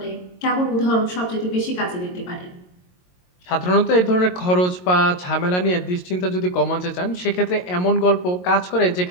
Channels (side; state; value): right; late; 22 ms